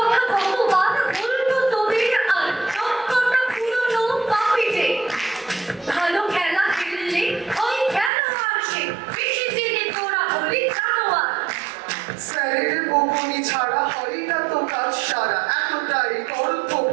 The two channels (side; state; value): left; drops out; at 8.1 s